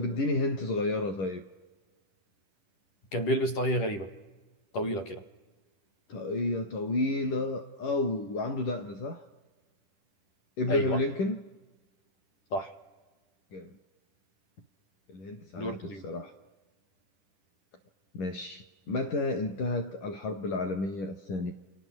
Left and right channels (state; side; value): late; right; 10 ms